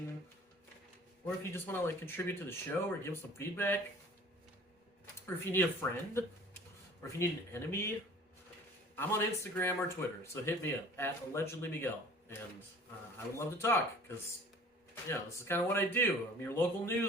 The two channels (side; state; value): both; normal; correlation 0.48